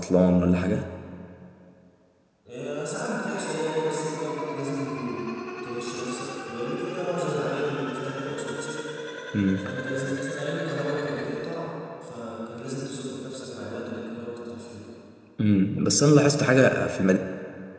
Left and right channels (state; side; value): identical; both; correlation 1.00